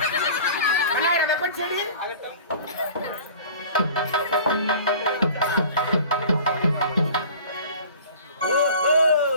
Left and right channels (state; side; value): inverted; both; correlation -0.43